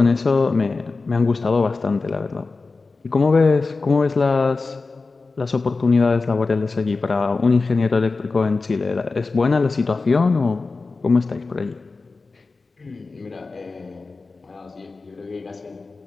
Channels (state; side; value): quieter; right; 3.9 dB